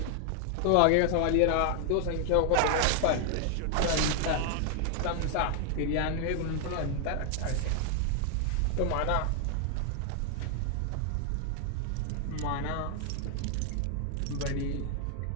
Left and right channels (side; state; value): both; different; correlation 0.00